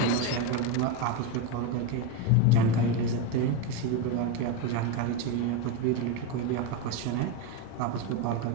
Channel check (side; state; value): both; different; correlation 0.05